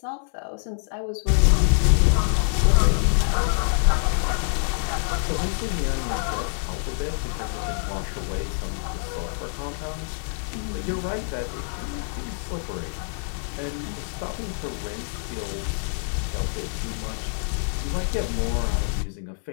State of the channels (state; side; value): silent; right; digital silence